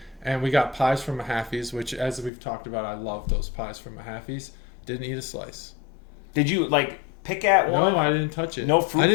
and we got pies from Mahaffey's, which, as we've talked about, I love those pies from Mahaffey's. Didn't eat a slice. Did you, like, pick at one? No, I didn't touch it. No fruit, I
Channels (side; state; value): right; drops out; at 2.3 s